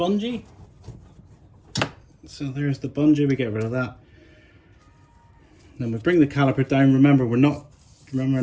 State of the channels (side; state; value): both; identical; correlation 1.00